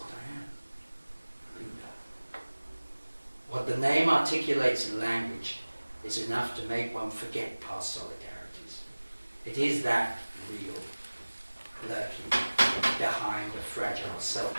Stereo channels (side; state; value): both; inverted; correlation -1.00